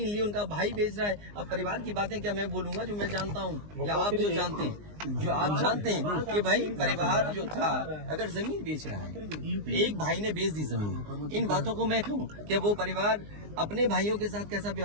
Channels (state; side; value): late; left; 19 ms